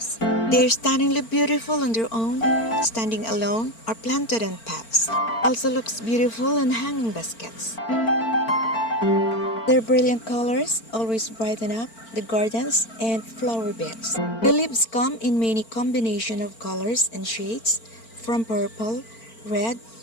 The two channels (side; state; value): right; late; 4.4 ms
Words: They're stunningly beautiful on their own, standing alone, or planted in pots. Also looks beautiful in hanging baskets. Their brilliant colors always brighten up the gardens and flower beds. The leaves come in many combinations of colors and shades, from purple, red,